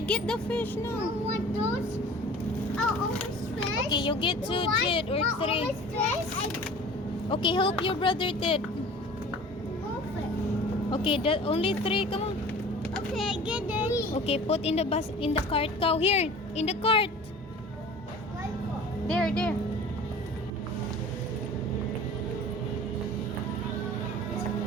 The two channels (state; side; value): normal; both; correlation 0.42